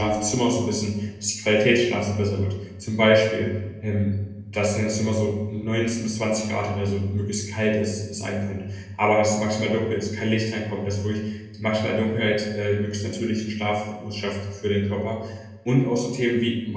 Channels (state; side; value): identical; both; correlation 1.00